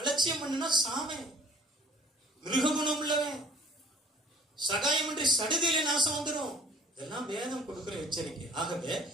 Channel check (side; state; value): both; normal; correlation 0.50